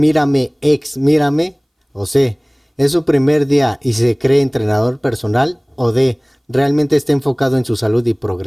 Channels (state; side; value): identical; both; correlation 1.00